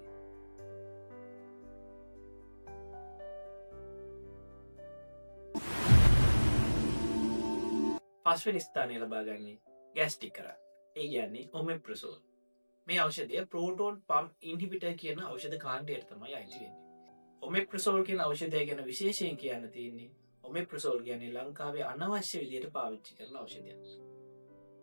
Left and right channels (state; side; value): inverted; both; correlation -1.00